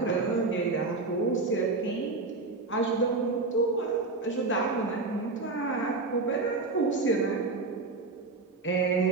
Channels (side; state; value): left; quieter; 3.6 dB